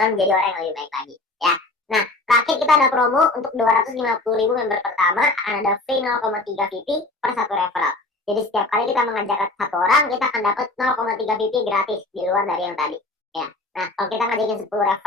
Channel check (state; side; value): quieter; right; 3.0 dB